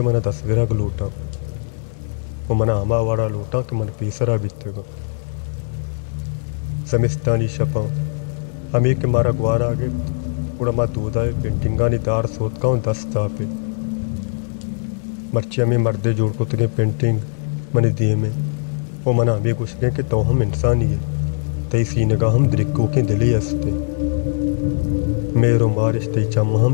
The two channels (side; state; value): right; silent; 65 dB below the other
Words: मन तस्वीरा गलूटा वो मना हमा वाड़ा लूटा के मन पीसरा बीतेगा समिस्तानी शपा अमी के मारा ग्वार आगे उड़ा मा दूधाए पेंटिंगानी दार सोत का दस्ता पे मर्ची अमी मर्दे जोड़ को तगे पेंटिंग मनी दिए में वो मना अमी गुस्से के तो हम इंसानी है तई सीने का हम द्रिक्को के दिली हंसते मेरो मारिश तई चम